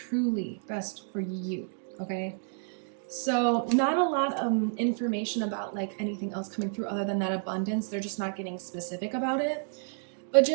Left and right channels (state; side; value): silent; left; 58 dB below the other